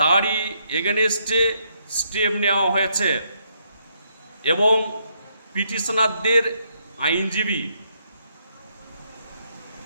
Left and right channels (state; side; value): inverted; both; correlation -0.75